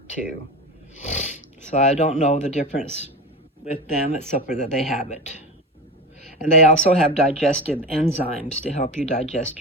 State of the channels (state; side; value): normal; both; correlation 0.26